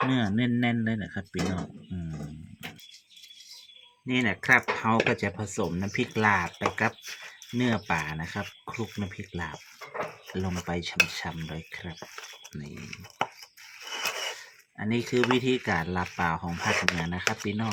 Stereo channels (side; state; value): both; identical; correlation 1.00